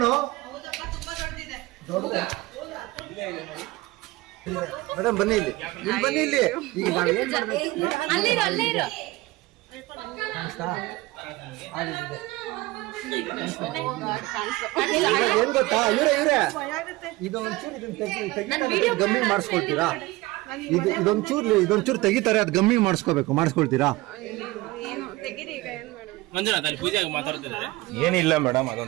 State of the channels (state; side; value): quieter; left; 20.2 dB